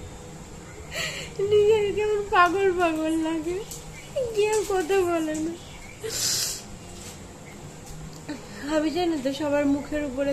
নিজের কেমন পাগল পাগল লাগে, কেউ কথা বলে না। আমি জানি তো সবার মুখের উপরে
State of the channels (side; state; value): both; identical; correlation 1.00